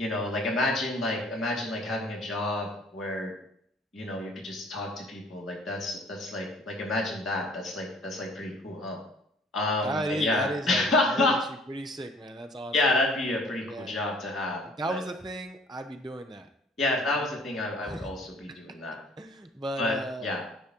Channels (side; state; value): both; normal; correlation 0.55